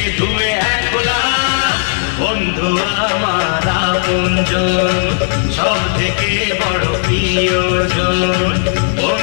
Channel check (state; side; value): silent; right; digital silence